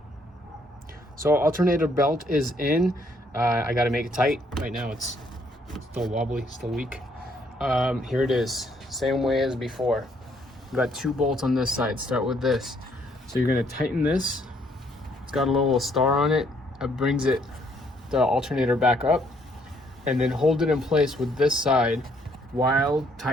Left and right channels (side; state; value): both; normal; correlation 0.68